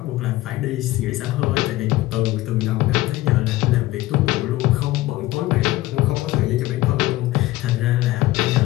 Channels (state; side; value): quieter; right; 17.6 dB